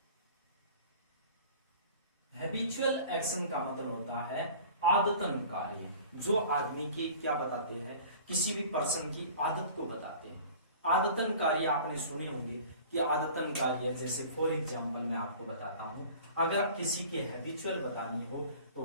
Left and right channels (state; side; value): inverted; both; correlation -0.44